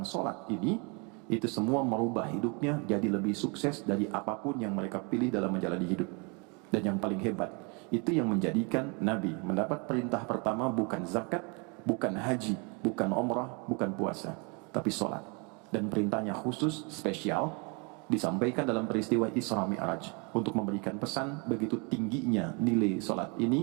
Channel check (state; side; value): quieter; left; 32.4 dB